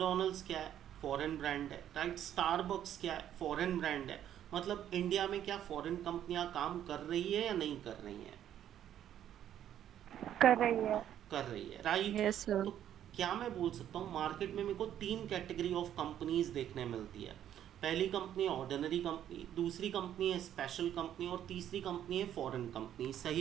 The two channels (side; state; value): left; quieter; 10.7 dB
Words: क्या है? फॉरेन ब्रांड है, राइट। स्टारबक्स क्या है? फॉरेन ब्रांड है। मतलब इंडिया में क्या फॉरेन कंपनियां काम कर रही है या नहीं कर रही हैं? कर रही है. कर रही है, राइट। Yes, sir. तो क्या मैं बोल सकता हूँ मार्केट में मेरे को तीन कैटेगरी ऑफ कंपनीज देखने मिलती है। पहली कंपनी ऑर्डिनरी कंपनी, दूसरी कंपनी है स्पेशल कंपनी, और तीसरी कंपनी है फॉरेन कंपनी।